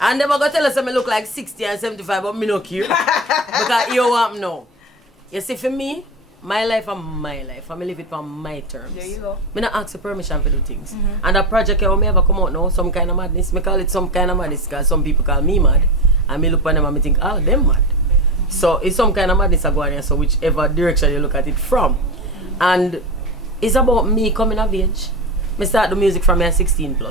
And they gonna tell us that me look like 60 and 75, but me no care. Because you want me now. You see, for me, my life and my life. I live it on my terms. There you go. Me not ask for permission for do things. And that project when me ever come out now, some kind of madness. Me call it some kind of madness because some people call me mad. And me look at them and me think, oh, them mad. So it's some kind of madness I go on here, so whichever direction you look at it from. And it's about me coming of age. Me start the music from me at 16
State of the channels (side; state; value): both; normal; correlation 0.21